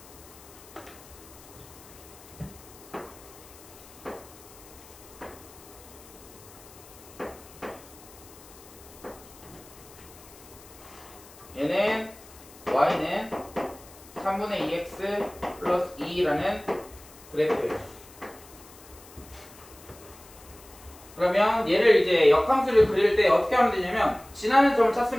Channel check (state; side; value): noise; left; hiss, 21 dB below the sound